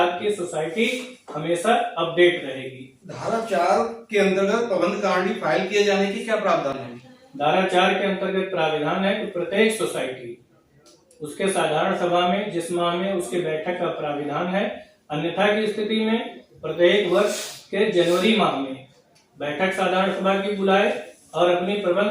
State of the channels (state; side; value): identical; both; correlation 1.00